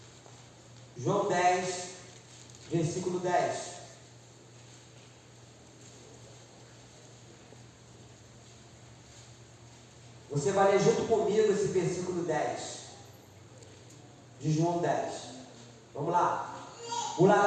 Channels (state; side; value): identical; both; correlation 1.00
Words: João 10, versículo 10. Você vai ler junto comigo esse versículo 10 de João 10. Vamos lá. O